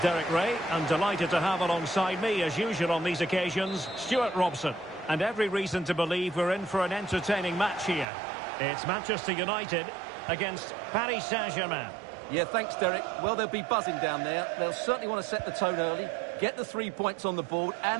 Ray, and delighted to have alongside me, as usual on these occasions, Stuart Robson. And every reason to believe we're in for an entertaining match here. It's Manchester United against Paris Saint-Germain. Yeah, thanks, Derek. Well, they'll be buzzing down there. They'll certainly want to set the tone early, get the 3 points on the board,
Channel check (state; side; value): drops out; left; at 8.1 s